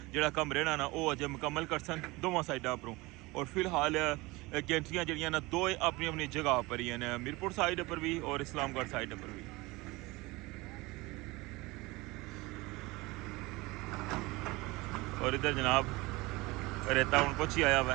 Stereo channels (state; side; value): quieter; left; 22.4 dB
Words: जड़ा कम रहना ना वो अजय मुकम्मल कर सन दोवां साइडा उपरों। और फिलहाल गेंट्रियां जड़ियां ना दो अपनी अपनी जगह पर ही हैं, मीरपुर साइड पर भी और इस्लामगढ़ साइड पर भी। और इधर जनाब रेता हूँ कुछ ही आया हुआ